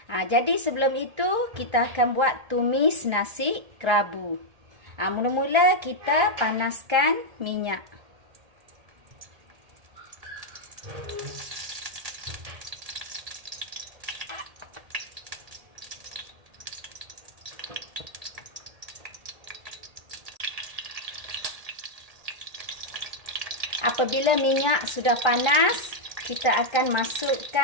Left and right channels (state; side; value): late; left; 1.8 ms